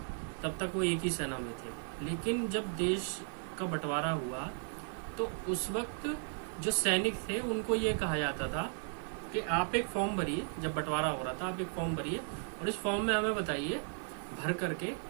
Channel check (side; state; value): left; silent; 54 dB below the other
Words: तब तक वो एक ही सेना में थे। लेकिन जब देश का बंटवारा हुआ तो उस वक्त जो सैनिक थे उनको ये कहा जाता था कि आप एक फॉर्म भरिए। जब बंटवारा हो रहा था आप एक फॉर्म भरिए और इस फॉर्म में हमें बताइए भर करके